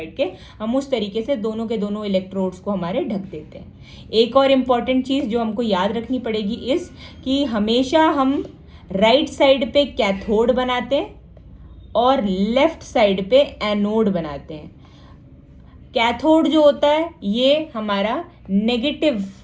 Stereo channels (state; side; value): identical; both; correlation 1.00